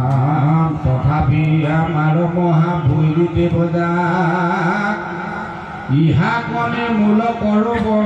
তথাপি আমাৰ মহাভৈৰী দেৱতা ইহা কনে মূল কৰো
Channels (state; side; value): identical; both; correlation 1.00